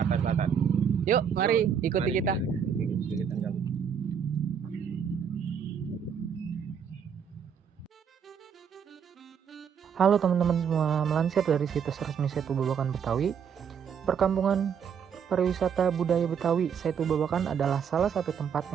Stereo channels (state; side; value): quieter; left; 7.4 dB